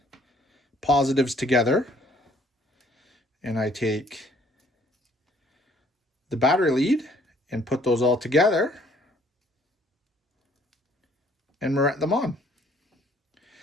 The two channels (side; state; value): both; normal; correlation 0.62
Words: positives together, and I take the battery lead and put those all together and moret them on.